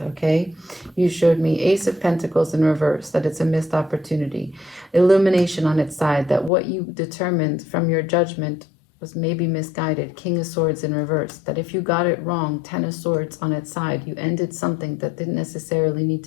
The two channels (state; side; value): drops out; right; at 6.5 s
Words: okay? You showed me Ace of Pentacles in reverse, that it's a missed opportunity. Illumination on its side, that what you determined from your judgment was maybe misguided. King of Swords in reverse. That if you got it wrong, Ten of Swords on its side, you ended something that didn't necessarily need